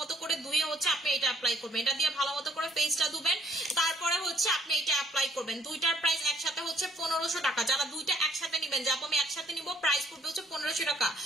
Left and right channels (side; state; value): both; normal; correlation 0.64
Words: করে ধুয়ে হচ্ছে আপনি এটা অ্যাপ্লাই করবেন, এটা দিয়ে ভালো মতো করে ফেসটা ধুবেন, তারপরে হচ্ছে আপনি এটা অ্যাপ্লাই করবেন। দুইটার প্রাইস একসাথে হচ্ছে 1500 টাকা। যারা দুইটা একসাথে নেবেন, যাবো আমি একসাথে নিব, প্রাইস পড়বে হচ্ছে 1500 টাকা।